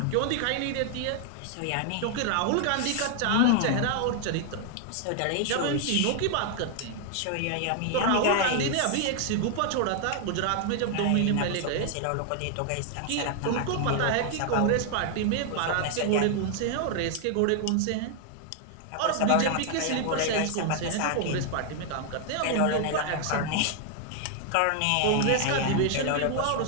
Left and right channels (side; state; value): both; different; correlation 0.00